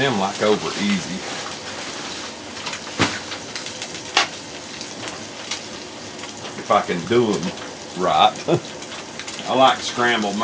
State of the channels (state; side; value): identical; both; correlation 1.00